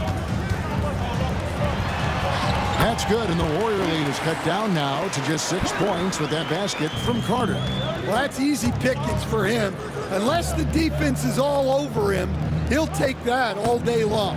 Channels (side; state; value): both; identical; correlation 1.00